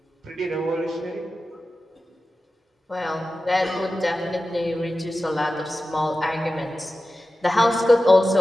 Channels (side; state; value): both; normal; correlation 0.94